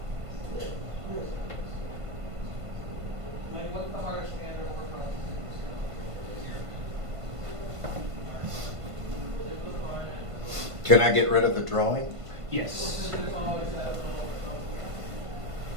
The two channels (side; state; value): left; late; 1.5 ms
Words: Can I get rid of the drawing? Yes.